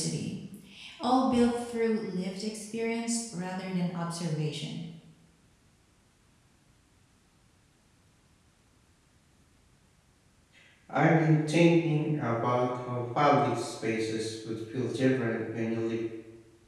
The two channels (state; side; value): identical; both; correlation 1.00